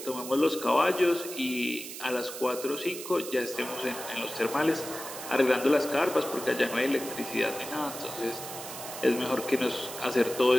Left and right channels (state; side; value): noise; right; hiss, 10 dB below the sound